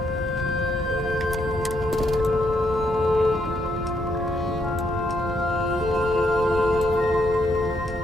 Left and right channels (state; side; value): normal; both; correlation 0.75